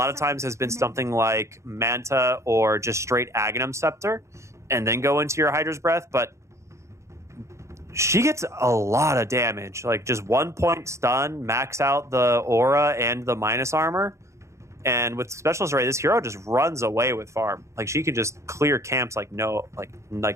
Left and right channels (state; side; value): late; left; 0.14 ms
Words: of times has been something like Manta or just straight Aghanim Scepter, and then go into your Hydra's Breath. But she gets a lot of damage, like just 1 point stun, max out the aura and the minus armor. And with Specialist Array, this hero just runs away with farm. Like she can just clear camps like